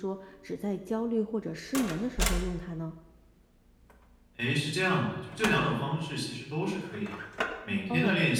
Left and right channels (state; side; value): identical; both; correlation 1.00